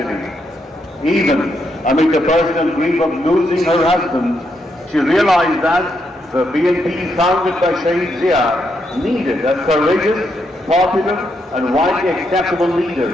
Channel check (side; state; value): both; normal; correlation 0.79